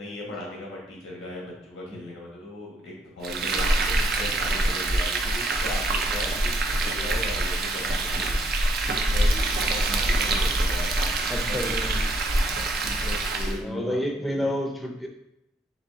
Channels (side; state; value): both; normal; correlation 0.69